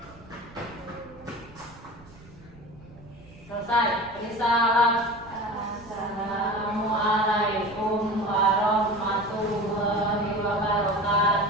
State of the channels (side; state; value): right; noise; rumble, 22 dB below the sound